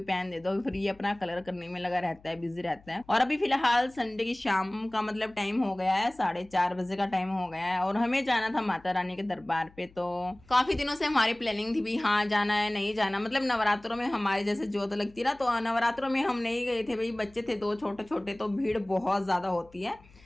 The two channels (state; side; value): noise; left; hum, 26 dB below the sound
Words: पेन दे दो। फिर ये अपना कलर करने में लगा रहता है, बिजी रहता है। और अभी फिलहाल संडे की शाम का मतलब टाइम हो गया है, 4:30 बजे का टाइम हो गया है, और हमें जाना था माता रानी के दरबार पे। तो काफी दिनों से हमारी प्लानिंग थी भी हाँ जाना है नहीं जाना, मतलब नवरात्रों में हमारे जैसे जोत लगती है ना, तो नवरात्रों में हम नहीं गए थे भाई, बच्चे थे 2 छोटे छोटे, तो भीड़ बहुत ज्यादा होती है,